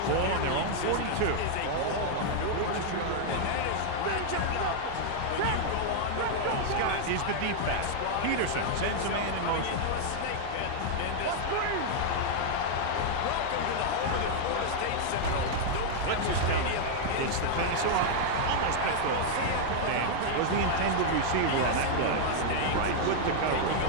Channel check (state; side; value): different; both; correlation 0.00